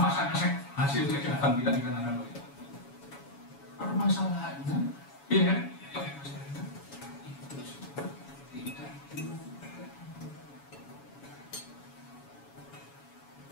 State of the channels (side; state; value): right; late; 7.1 ms